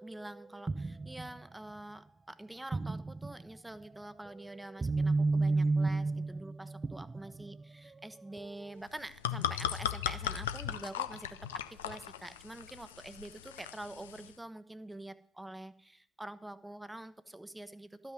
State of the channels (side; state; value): both; normal; correlation 0.69